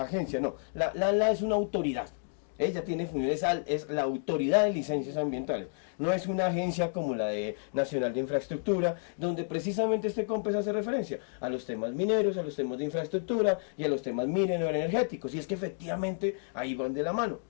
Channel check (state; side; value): silent; right; digital silence